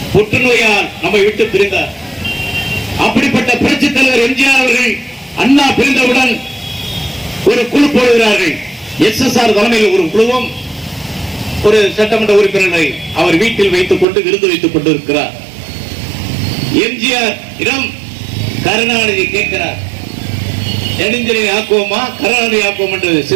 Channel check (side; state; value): left; drops out; at 14.1 s